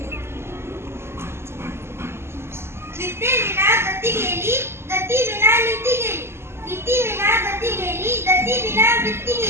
विद्येविना गती गेली, गती विना नीती गेली. नीती विना गती गेली, गती विना वृत्ती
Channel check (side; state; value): left; late; 0.12 ms